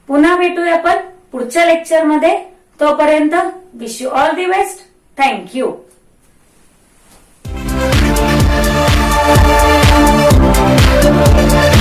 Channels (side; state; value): both; identical; correlation 1.00